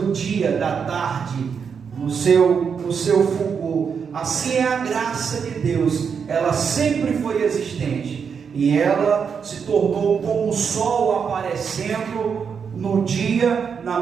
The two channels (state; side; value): quieter; left; 6.5 dB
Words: dia, da tarde, no seu fulgor. Assim é a graça de Deus, ela sempre foi existente e ela se tornou como o sol aparecendo no dia, na